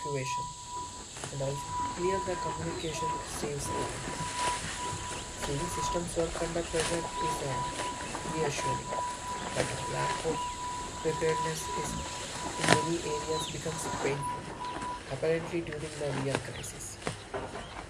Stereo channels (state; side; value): identical; both; correlation 1.00